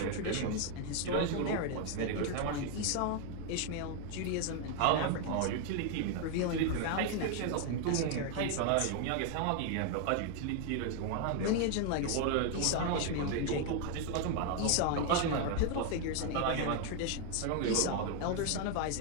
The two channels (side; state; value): both; different; correlation 0.01